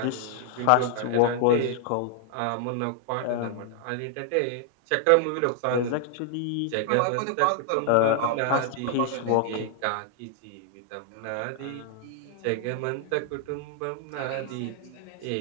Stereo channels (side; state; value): both; different; correlation 0.00